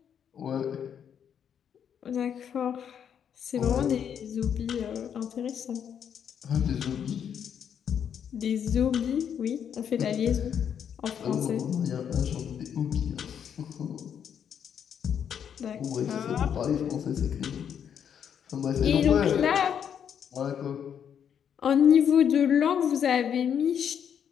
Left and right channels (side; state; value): right; quieter; 8.3 dB